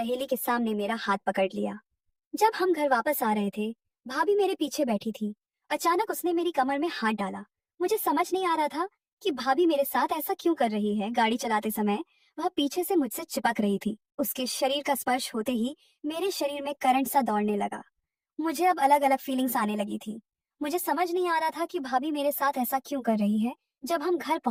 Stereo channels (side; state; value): both; identical; correlation 1.00